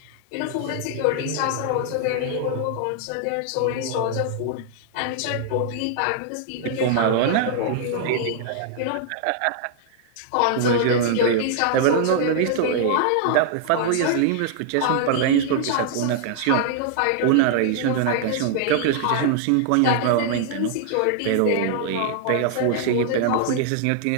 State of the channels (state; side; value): different; both; correlation -0.01